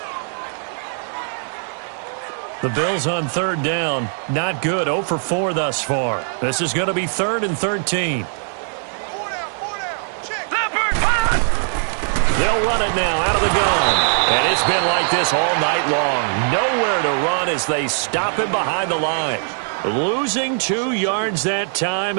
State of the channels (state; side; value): silent; left; 60 dB below the other